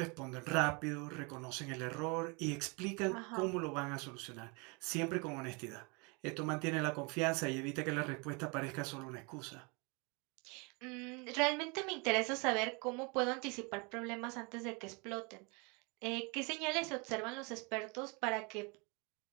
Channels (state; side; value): quieter; left; 30.7 dB